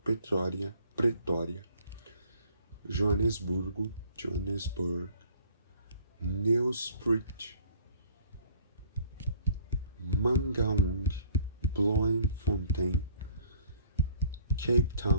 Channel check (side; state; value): both; inverted; correlation -0.57